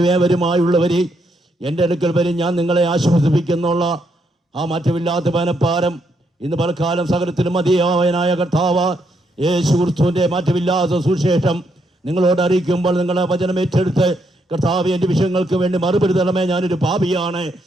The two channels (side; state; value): both; normal; correlation 0.76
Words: ഏവരുമായുള്ളവരെ എൻ്റെ അടുക്കൽ വരും, ഞാൻ നിങ്ങളെ ആശ്വസിപ്പിക്കുന്നുള്ള ആ മാറ്റമില്ലാത്ത മനപ്പാരം ഇന്ന് പലക്കാലം സകലത്തിലും മതിയായവനായ കർത്താവ് യേശു ക്രിസ്തുവിൻ്റെ മാറ്റമില്ലാത്ത സുവിശേഷം നിങ്ങളോട് അറിയിക്കുമ്പോൾ നിങ്ങളെ വചനം ഏറ്റെടുത്ത് കർത്താവ് എൻ്റെ വിഷയങ്ങൾക്ക് വേണ്ടി മറുപടി തരണമേ, ഞാനൊരു പാപിയാണ്